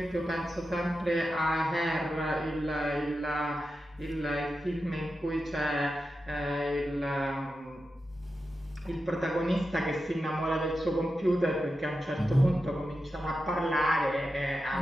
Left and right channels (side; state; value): both; normal; correlation 0.90